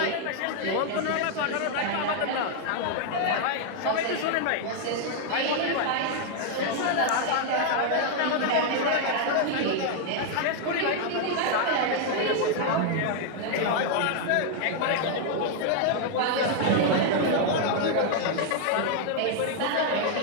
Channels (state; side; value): different; both; correlation 0.00